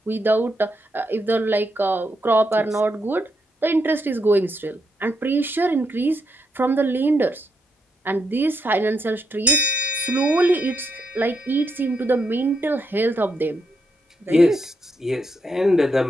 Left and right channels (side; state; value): both; normal; correlation 0.81